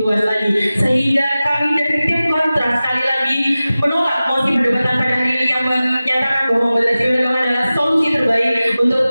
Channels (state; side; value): inverted; both; correlation -0.96